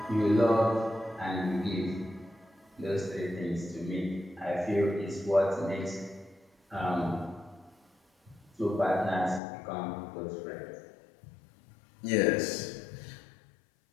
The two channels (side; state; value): right; drops out; at 9.4 s